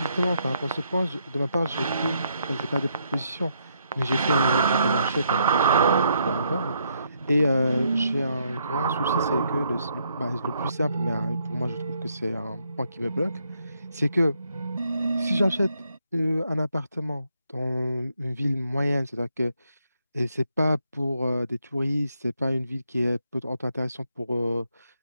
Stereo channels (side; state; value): both; inverted; correlation -0.75